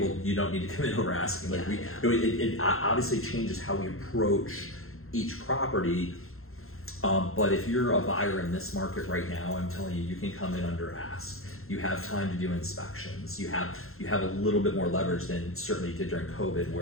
you don't need to come in over asking. Like Yeah, it obviously changes how we approach each property. But if you're a buyer in this market right now, I'm telling you, you can come in under ask. You have time to do inspections. You have a little bit more leverage than certainly did during COVID,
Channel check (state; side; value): late; right; 0.62 ms